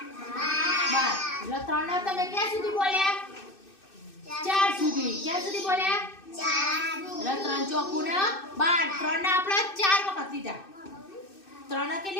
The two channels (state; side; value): late; right; 2.6 ms